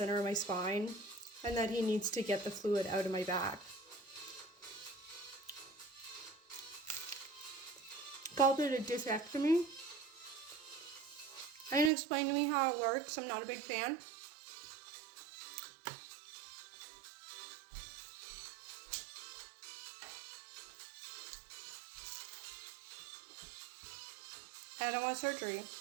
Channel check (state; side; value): drops out; left; at 11.9 s